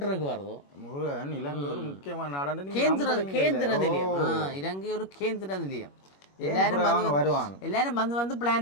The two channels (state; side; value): late; right; 21 ms